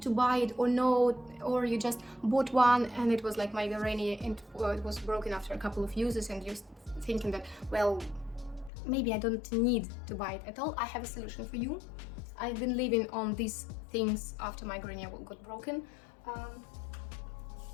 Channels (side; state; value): right; drops out; at 8.7 s